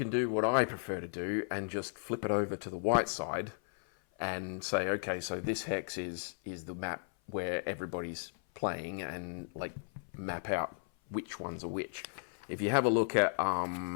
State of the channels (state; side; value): silent; right; 54 dB below the other